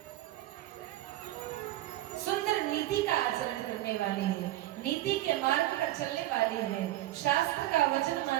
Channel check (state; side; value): quieter; left; 15.5 dB